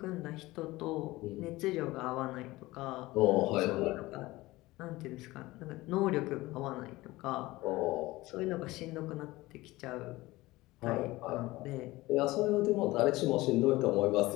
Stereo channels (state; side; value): quieter; right; 19.3 dB